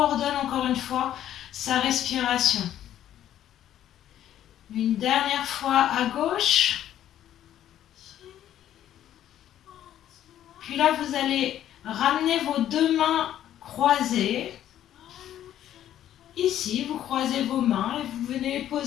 encore une fois sa respiration. Une dernière fois à gauche. Puis là, vous allez ramener vos 2 mains croisées. Ici, vous croisez vos mains et vous venez les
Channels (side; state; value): right; quieter; 11.5 dB